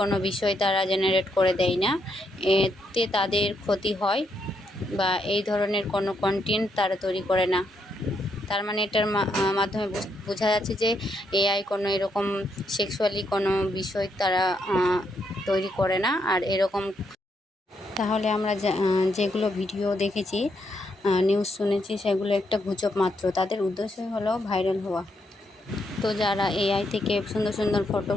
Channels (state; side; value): normal; both; correlation 0.78